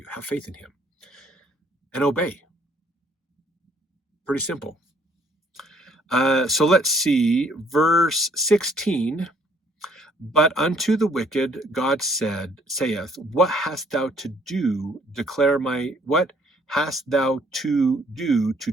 Have faith in him. And obey. Pretty simple. So let's see, verse 16. But unto the wicked God saith, what hast thou to do, what hast thou to do to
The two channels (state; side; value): normal; both; correlation 0.63